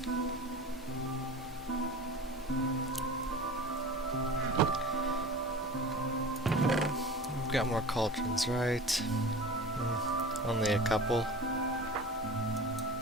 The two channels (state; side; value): normal; both; correlation 0.36